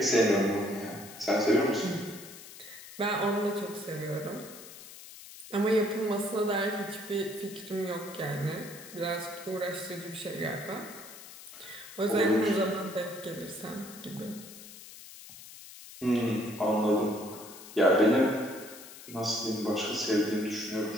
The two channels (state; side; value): noise; left; hiss, 16 dB below the sound